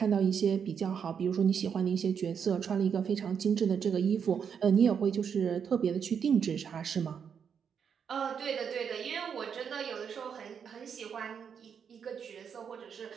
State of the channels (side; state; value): left; quieter; 7.2 dB